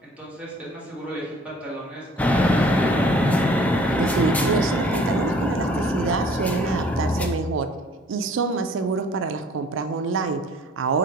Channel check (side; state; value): both; normal; correlation 0.54